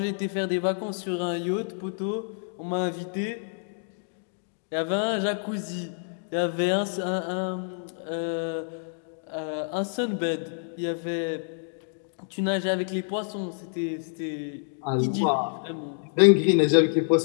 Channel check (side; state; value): right; silent; digital silence